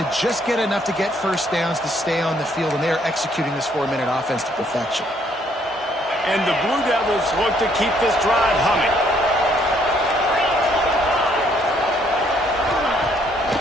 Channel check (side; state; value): both; normal; correlation 0.67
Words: just get enough to get first downs to stay on the field, and they are executing this 4-minute offense to perfection. And the Blue Devils look to keep this drive humming.